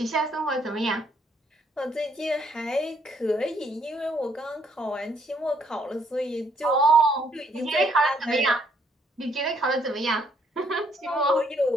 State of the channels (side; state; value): both; normal; correlation 0.68